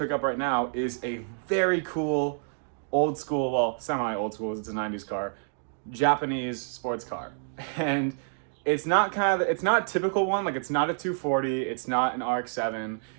up right now is a very cool, old school, well, semi-old school, it's a 90s car, Japanese sports car. And it's not a typical one, like it's not a 240, it's not an RX-7.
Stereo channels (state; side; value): silent; left; digital silence